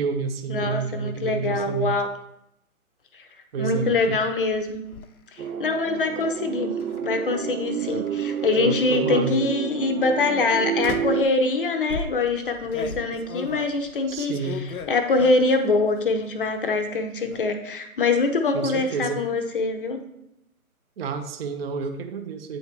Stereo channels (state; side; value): normal; both; correlation 0.26